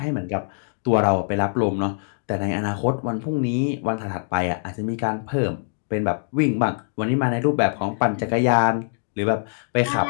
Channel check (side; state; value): right; silent; digital silence